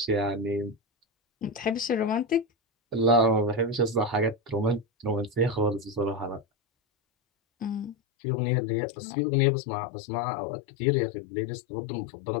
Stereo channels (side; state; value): right; drops out; at 8.0 s